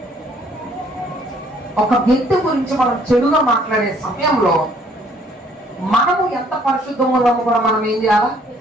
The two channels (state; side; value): normal; both; correlation 0.62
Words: ఒక వ్యక్తి గురించి మనం చెడుగా మాట్లాడే సమయంలో మనము ఎంత పరిశుద్ధంగా ఉన్నామో కూడా మనం ఏం చేయాలా?